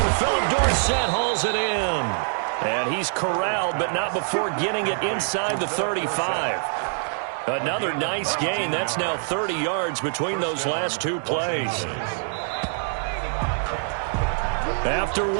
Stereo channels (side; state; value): left; silent; 62 dB below the other